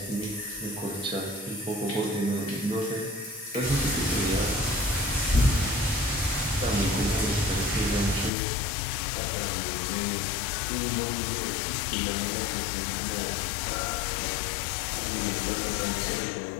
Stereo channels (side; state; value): right; drops out; at 8.3 s